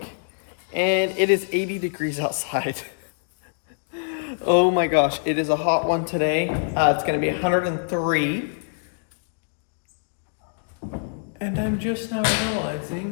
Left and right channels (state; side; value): silent; right; digital silence